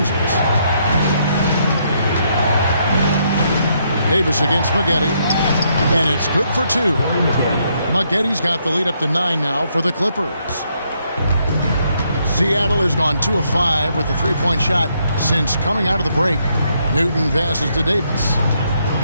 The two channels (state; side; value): inverted; both; correlation -0.74